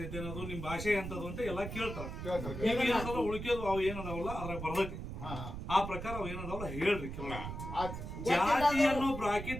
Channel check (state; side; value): noise; right; rumble, 7 dB below the sound